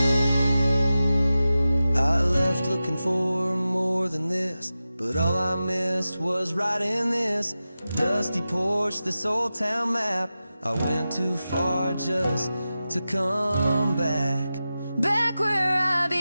I left looking for more than this, but all I missed was right in this dusty porch, this old town map. I went too far just to come back. Back where I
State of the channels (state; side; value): inverted; both; correlation -0.93